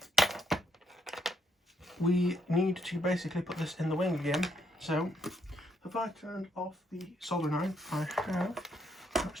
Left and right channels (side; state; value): both; normal; correlation 0.74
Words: We need to basically put this in the wing again. So if I turned off the soldering iron, I have. Let's